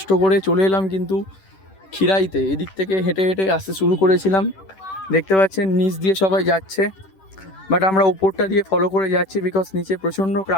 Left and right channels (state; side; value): late; right; 10 ms